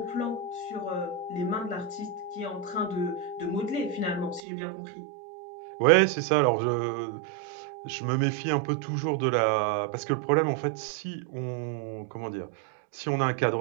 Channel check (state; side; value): drops out; left; at 4.4 s